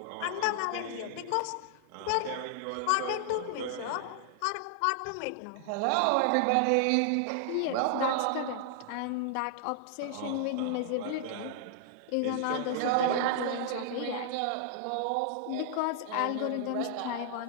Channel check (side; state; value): both; different; correlation -0.01